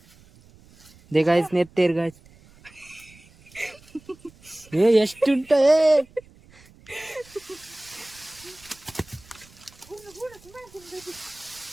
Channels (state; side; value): noise; right; rumble, 25 dB below the sound